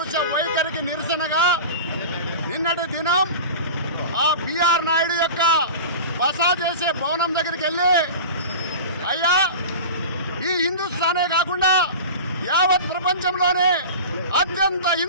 వైఖరికి నిరసనగా నిన్నటి దినం ఆ పిఆర్ నాయుడు యొక్క బస చేసే భవనం దగ్గరికి వెళ్ళి, అయ్యా, ఈ హిందుస్థానే కాకుండా యావత్ ప్రపంచంలోనే అత్యంత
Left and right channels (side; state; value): both; inverted; correlation -0.33